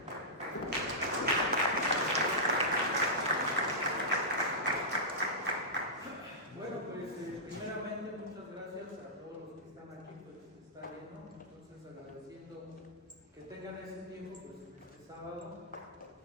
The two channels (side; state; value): both; normal; correlation -0.14